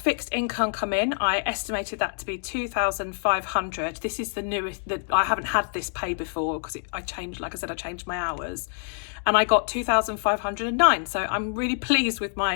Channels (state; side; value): silent; right; 61 dB below the other